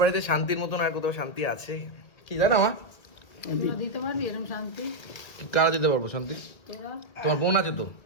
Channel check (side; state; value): right; late; 1.6 ms